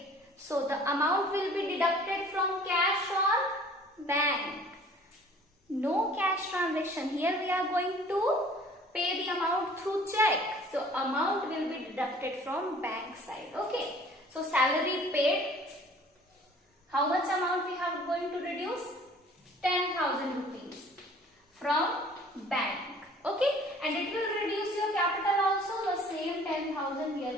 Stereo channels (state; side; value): normal; both; correlation 0.51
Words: So the amount will be deducted from cash or bank. No cash transaction. Here we are going to pay the amount through check. So amount will be deducted from bank side. Okay. So salary paid. How much amount we have going to reduce? 10,000 rupees from bank. Okay. And it will reduce your capital also. The same 10,000 we